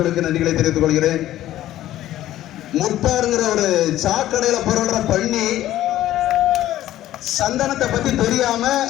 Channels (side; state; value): right; quieter; 13.7 dB